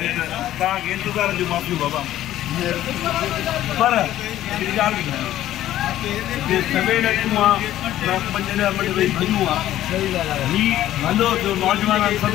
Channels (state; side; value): quieter; right; 13.3 dB